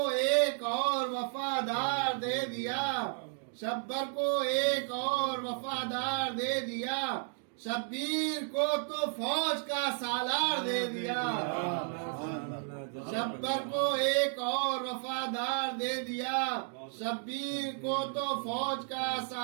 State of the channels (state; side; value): silent; left; 56 dB below the other